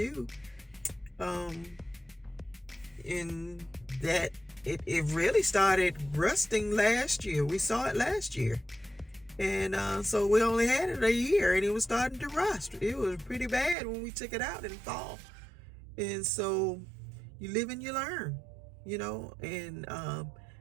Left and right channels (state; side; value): drops out; left; at 13.8 s